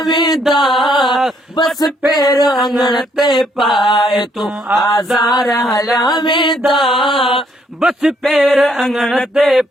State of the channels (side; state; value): both; normal; correlation 0.70